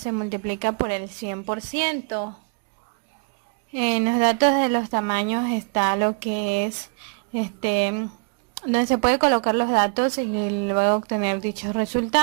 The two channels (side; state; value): left; quieter; 38.8 dB